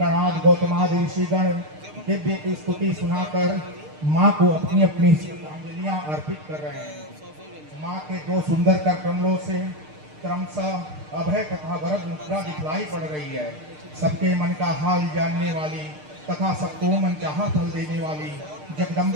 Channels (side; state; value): left; late; 6.6 ms